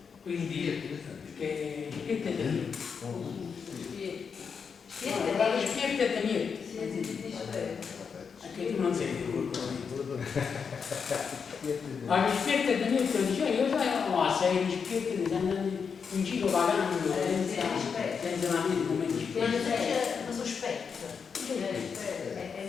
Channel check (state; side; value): quieter; right; 6.1 dB